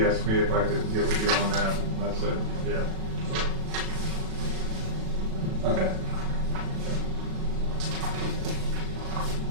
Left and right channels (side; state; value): left; late; 37 ms